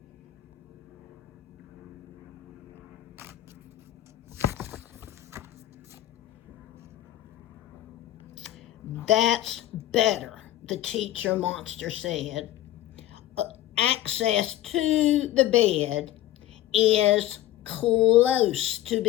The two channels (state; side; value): quieter; right; 13.9 dB